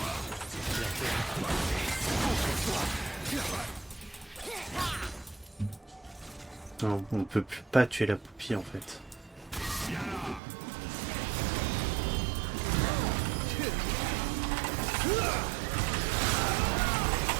Non, on peut plus pas tuer la poupille en fait.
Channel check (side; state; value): left; drops out; at 10.4 s